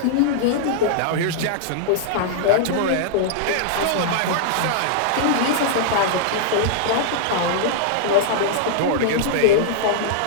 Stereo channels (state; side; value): different; both; correlation -0.01